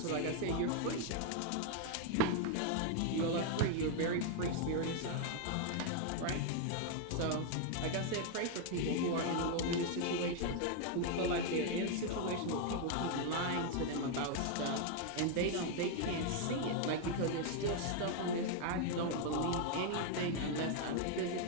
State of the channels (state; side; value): different; both; correlation 0.00